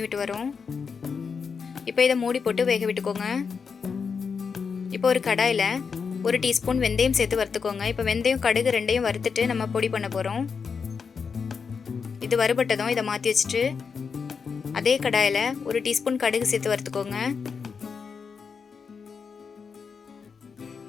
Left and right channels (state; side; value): quieter; right; 5.8 dB